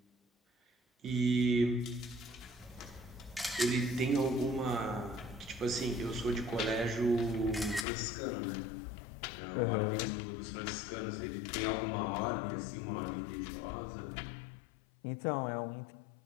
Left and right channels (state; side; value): drops out; right; at 7.9 s